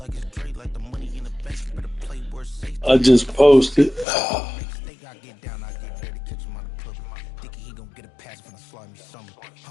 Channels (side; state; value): right; drops out; at 4.0 s